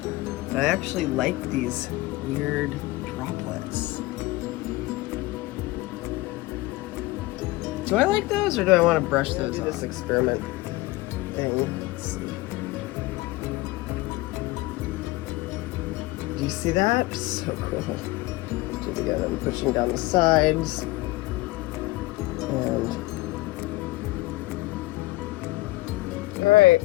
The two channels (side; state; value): right; quieter; 20.1 dB